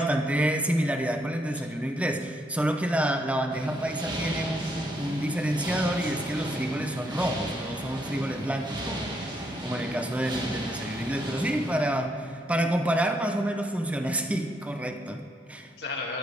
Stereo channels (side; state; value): both; normal; correlation 0.75